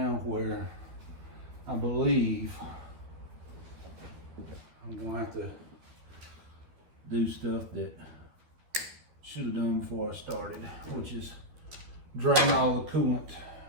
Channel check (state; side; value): late; left; 13 ms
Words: where I believe I'm going to have to do stuff that should have done before I started, which is drain all the coolant